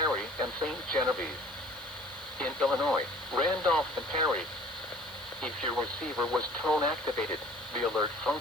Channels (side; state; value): right; noise; hiss, 21 dB below the sound